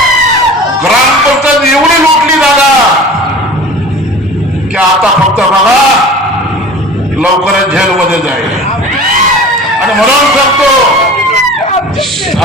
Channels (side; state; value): both; normal; correlation 0.40